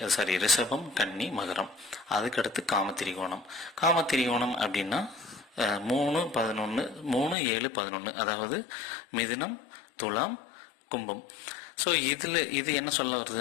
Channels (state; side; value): drops out; right; at 7.4 s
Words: ரிஷபம், கன்னி, மகரம். அதுக்கடுத்து காமத்திரிகோணம். காமத்திரிகோணம் அப்படின்னா 3, 11, 3, 7, 11. அதாவது மிதுனம், துலாம், கும்பம். ஸோ இது என்ன சொல்ல